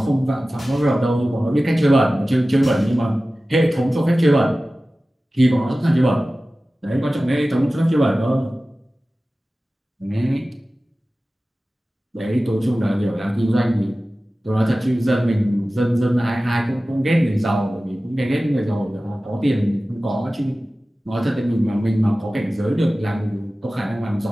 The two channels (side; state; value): both; normal; correlation 0.96